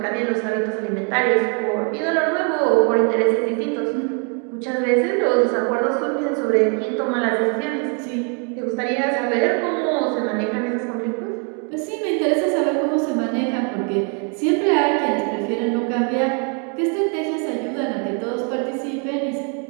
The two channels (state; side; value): quieter; left; 38.9 dB